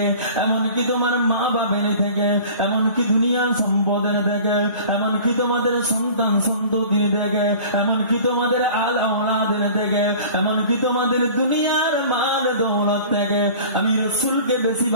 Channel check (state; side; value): inverted; both; correlation -0.43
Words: এমনকি তোমার মা বাবের থেকে, এমনকি দুনিয়ার সম্পদের থেকে, এমনকি তোমাদের সন্তান সন্ততির থেকে, এমনকি তোমাদের আল আওলাদের থেকে, এমনকি তোমাদের দুনিয়ার মাল দৌলত থেকে আমি রসুলকে বেশি